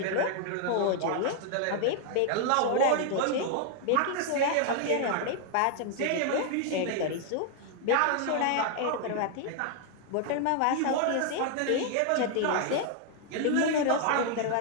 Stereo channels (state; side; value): different; both; correlation 0.00